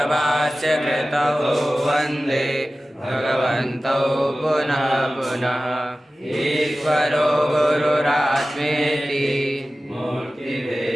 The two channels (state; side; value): normal; both; correlation 0.96